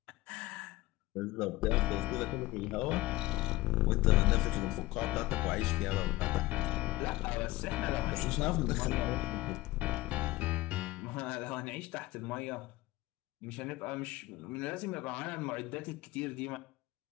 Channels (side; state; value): right; quieter; 18.6 dB